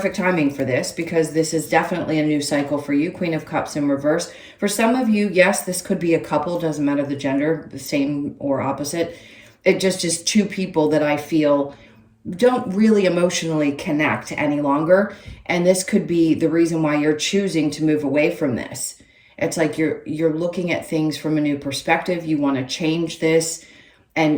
timing for this, because this is definitely a new cycle for you. Queen of Cups in reverse. For some of you, yes, this could be a couple. Doesn't matter the gender, the same or opposite. It just is two people that I feel don't really emotionally connect any longer. And this could be the reason why you're choosing to move away from this. It's like you're looking at things from a new perspective. You want to change this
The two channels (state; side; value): identical; both; correlation 1.00